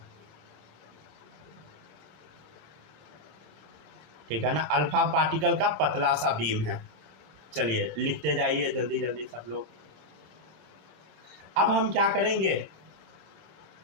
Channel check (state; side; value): late; left; 27 ms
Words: ठीक है ना। अल्फा पार्टिकल का पतला सा बीम है। चलिए लिखते जाइए जल्दी जल्दी सब लोग। अब हम क्या करेंगे?